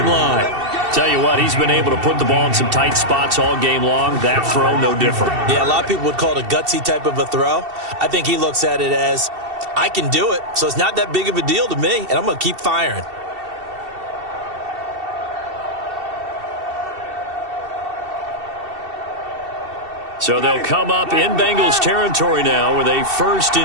line. Tell you what, he's been able to put the ball in some tight spots all game long. That throw, no different. Yeah, a lot of people would call it a gutsy type of a throw. I think he looks at it as, I can do it, so it's not that big of a deal to me, and I'm going to keep firing. So they'll come up in Bengals territory now with a 1st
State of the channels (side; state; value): left; late; 2.7 ms